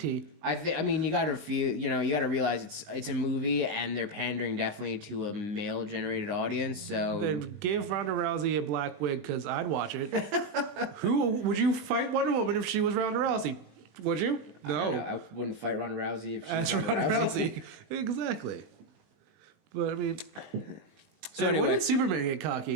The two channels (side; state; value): left; late; 20 ms